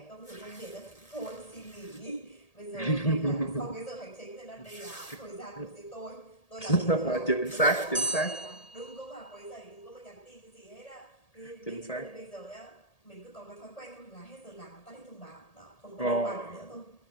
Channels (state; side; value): late; right; 1.8 ms